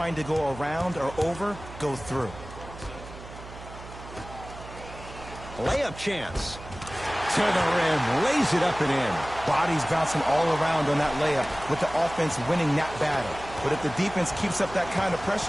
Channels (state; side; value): noise; right; hum, 15 dB below the sound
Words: to go around or over, go through. Layup chance. To the rim. Lays it up and in. Bodies bouncing all around on that layup with the offense winning that battle. But if the defense keeps up that kind of